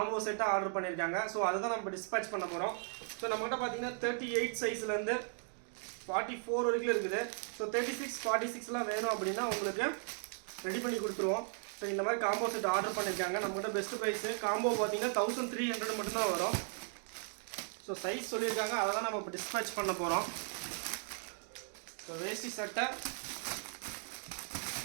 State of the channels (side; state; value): left; silent; 53 dB below the other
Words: செட்டாக ஆர்டர் பண்ணியிருக்காங்க. ஸோ அதுதான் நம்ம டிஸ்பேச் பண்ண போகிறோம். ஸோ நம்மகிட்ட பார்த்தீங்கன்னா 38 சைஸ்லேருந்து 44 வரைக்கும் இருக்குது. ஸோ 36, 46லாம் வேணும் அப்படின்னா உங்களுக்கு ரெடி பண்ணி கொடுத்துருவோம். ஸோ இந்த மாதிரி காம்போ செட் ஆர்டர் பண்ணியிருக்காங்க. நம்மகிட்ட பெஸ்ட் ப்ரைஸு காம்போ பார்த்தீங்கன்னா 1300 மட்டும்தான் வரும். ஸோ சைஸ் சொல்லியிருக்காங்க, அதை தான் நம்ம இப்போ டிஸ்பேச் பண்ண போகிறோம். ஸோ வேஷ்டி சட்டை